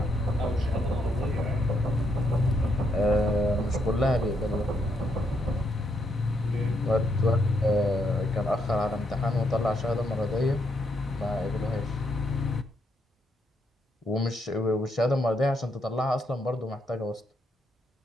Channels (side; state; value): both; normal; correlation 0.77